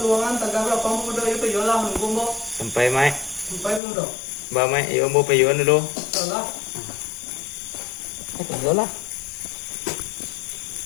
taga bra pang pemuda iyo payola menunggu mo. Sampai mai. Sampai pemuda. Ba mai yo mo payon dulu. Salah. Ay kayo lah.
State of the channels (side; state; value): right; drops out; at 3.8 s